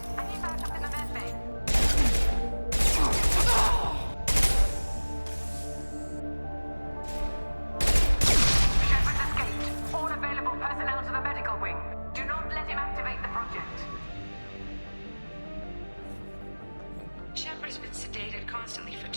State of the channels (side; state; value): both; inverted; correlation -1.00